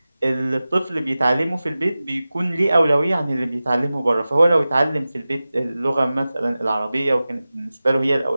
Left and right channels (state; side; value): inverted; both; correlation -0.96